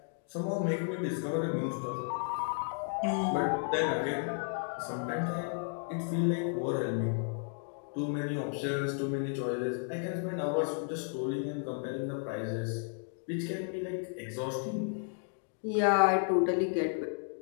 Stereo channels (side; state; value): right; silent; 56 dB below the other